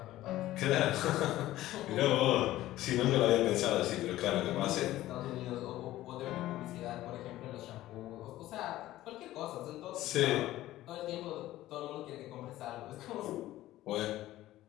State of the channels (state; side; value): quieter; right; 15.3 dB